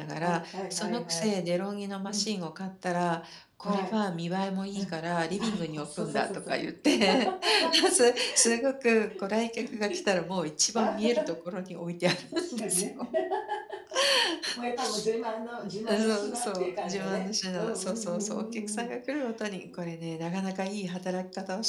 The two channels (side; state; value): both; identical; correlation 1.00